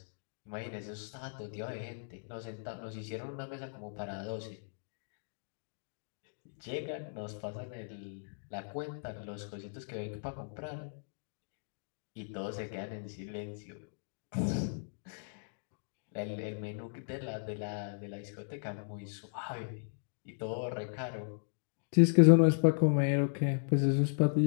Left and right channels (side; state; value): right; silent; digital silence